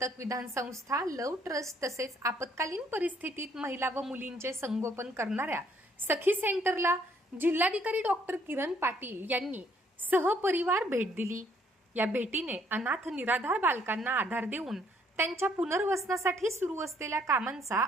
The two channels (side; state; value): both; normal; correlation 0.66